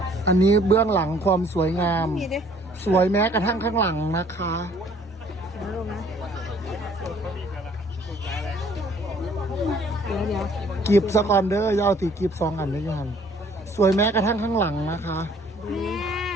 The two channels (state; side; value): normal; both; correlation 0.58